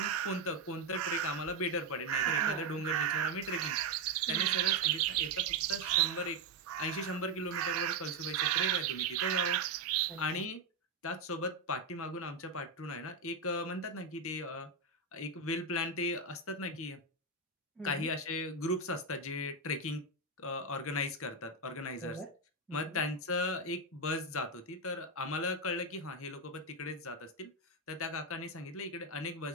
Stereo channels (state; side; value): quieter; left; 3.1 dB